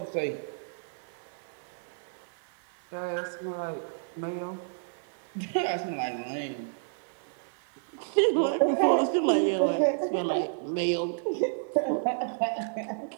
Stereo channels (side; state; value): left; silent; digital silence